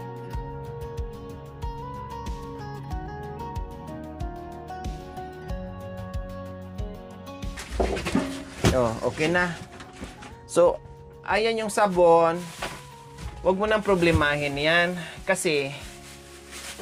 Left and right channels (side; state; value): both; identical; correlation 1.00